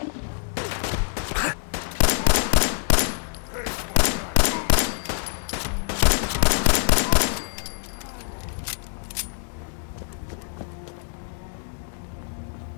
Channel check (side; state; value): right; silent; 62 dB below the other